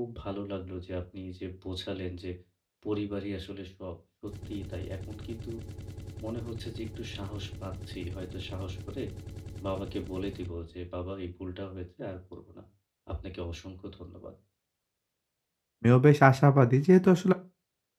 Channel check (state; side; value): identical; both; correlation 1.00